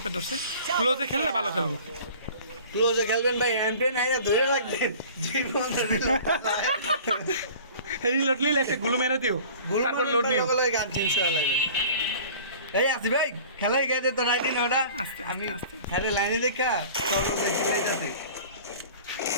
ধরছে ক্লোজে খেললে ভালো খেলবো ক্লোজে খেলবেন ভাই এমটেন আইয়া ধরে রাখবেন জীবন রিলোড নিলে একটা গুলো মেরে দিও তারপর লোড নিও গান চেঞ্জ করা লাগবে এই আসি ভাই খেলাই গেছে তো রাইটি না ওটা আস্তে আমি আস্তে খেলে লাইনে দেখা সব দেখি লাইতাছে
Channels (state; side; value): inverted; both; correlation -0.44